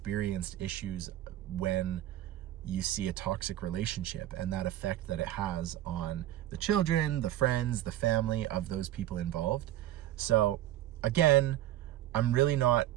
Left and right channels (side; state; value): left; quieter; 13.6 dB